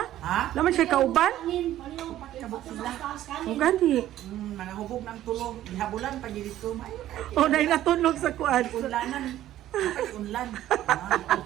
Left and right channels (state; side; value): quieter; left; 13.2 dB